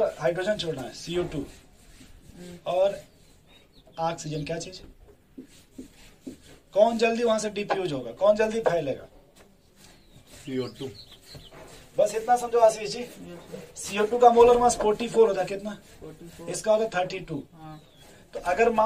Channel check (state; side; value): identical; both; correlation 1.00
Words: हाइड्रोजन छोड़ना है, CO2 और ऑक्सीजन, क्या चीज, कौन जल्दी वहां से डिफ्यूज होगा, कौन जल्दी फैलेगा? CO2 बस इतना समझो Ashish ji. Yes sir. CO2 का मोलर मास 44 होता है, कितना? 44। इसका होता है 32। हाँ तो अगर